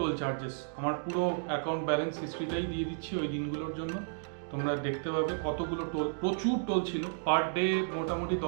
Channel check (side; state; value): left; silent; digital silence